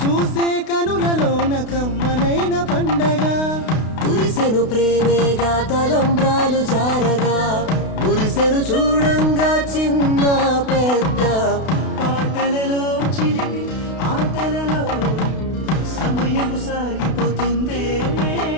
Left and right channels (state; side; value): late; right; 32 ms